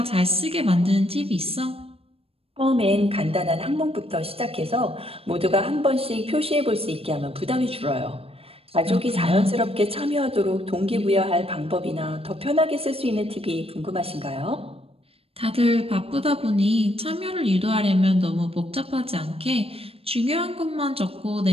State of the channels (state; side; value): late; left; 0.28 ms